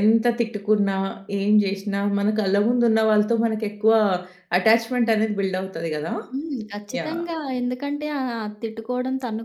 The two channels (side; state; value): both; identical; correlation 1.00